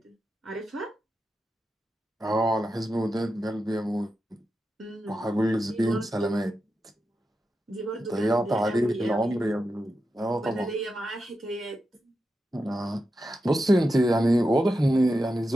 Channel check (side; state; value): both; normal; correlation 0.89